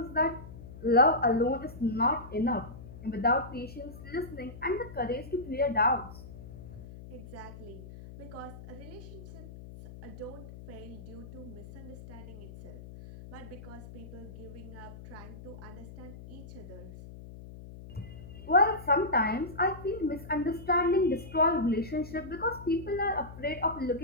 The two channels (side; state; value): left; noise; hum, 14 dB below the sound